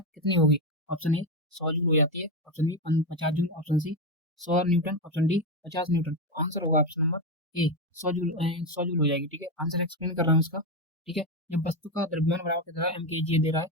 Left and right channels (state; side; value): normal; both; correlation 0.11